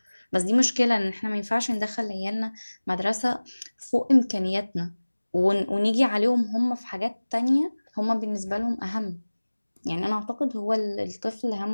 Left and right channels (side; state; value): both; inverted; correlation -1.00